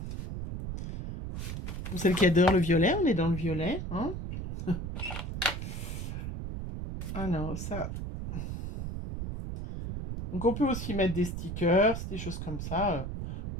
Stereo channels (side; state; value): right; noise; rumble, 5 dB below the sound